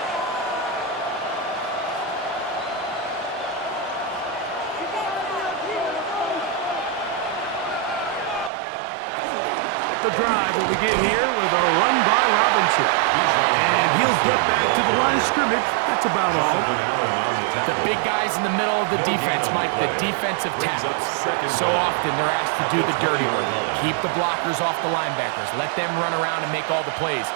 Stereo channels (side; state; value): left; drops out; at 8.5 s